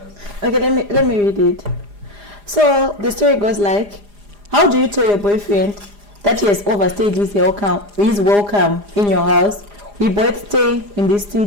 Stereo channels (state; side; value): late; left; 4.9 ms